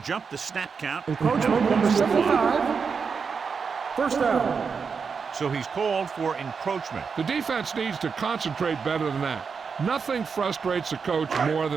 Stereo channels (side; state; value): left; quieter; 5.7 dB